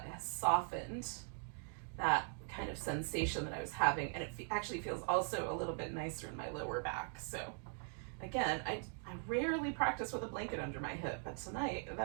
has softened that kind of sensation that I was having, and it actually feels also a little bit nicer in my lower back. So again, I rarely practice with a blanket under my hip, but tonight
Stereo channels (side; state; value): left; silent; 50 dB below the other